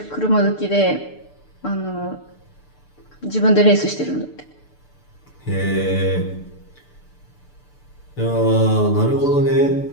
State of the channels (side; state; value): right; late; 6.8 ms